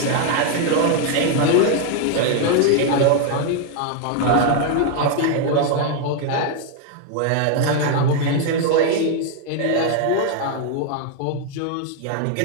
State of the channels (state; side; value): different; both; correlation 0.00